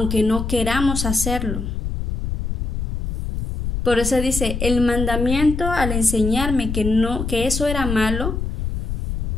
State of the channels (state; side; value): noise; left; rumble, 3 dB below the sound